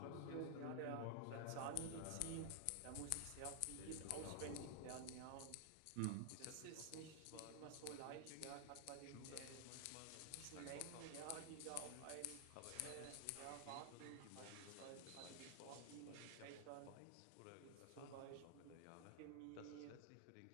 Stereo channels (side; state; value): both; different; correlation 0.00